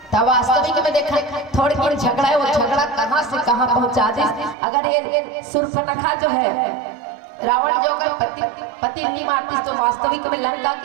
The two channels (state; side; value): drops out; left; at 4.5 s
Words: तब वास्तविक में देखा थोड़ी देर झगड़ा है, वो झगड़ा कहां से कहां पहुंचा दिस। अगर ये सुर्पनखा जो है रावण जो अगर पति नहीं मारती तो वास्तविक में लंका